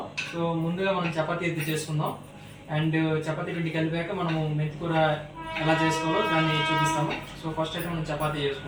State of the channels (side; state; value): both; identical; correlation 1.00